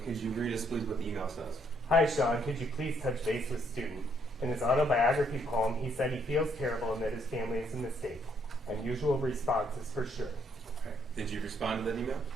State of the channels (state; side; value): normal; both; correlation 0.70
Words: could you read us, please, what the email says? "Hi, Sean. Could you please touch base with student? In his autobiography poem, he said he feels terrible and that his family is a mistake. Unusual responses for sure." Okay. Did you respond to that email?